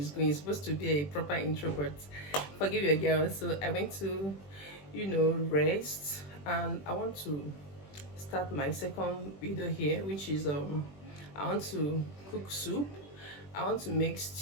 going. It's supposed to be a proper intro, but forgive your girl. So I went to, rest, and I want to start my second video here, which is I want to cook soup. I want to make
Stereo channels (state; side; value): late; right; 21 ms